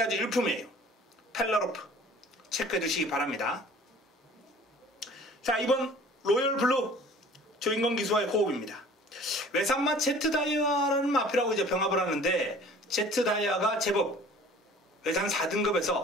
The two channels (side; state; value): both; normal; correlation 0.49